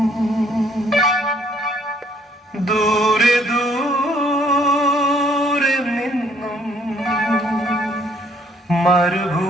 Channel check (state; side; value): normal; both; correlation 0.64